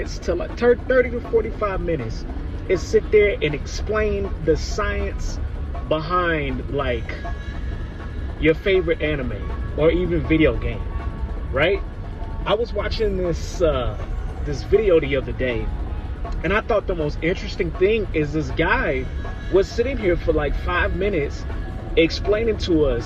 to like 30 to 45 minutes is sit there and explain the science behind like your favorite anime or even video game, right? I was watching this video the other day, and I thought the most interesting thing is this guy was sitting here for like 5 minutes explaining to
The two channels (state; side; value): identical; both; correlation 1.00